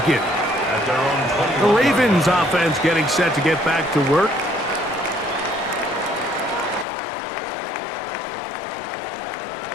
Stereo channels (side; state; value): right; drops out; at 6.9 s